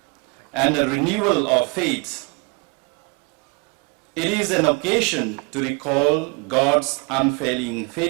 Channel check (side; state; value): left; quieter; 32.0 dB